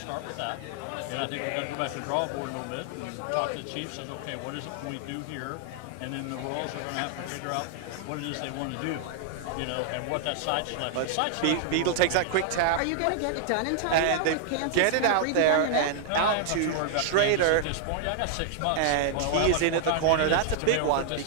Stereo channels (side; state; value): both; different; correlation 0.00